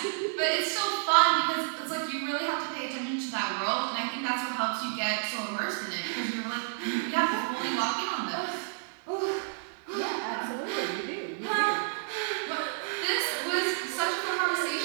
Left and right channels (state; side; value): silent; left; digital silence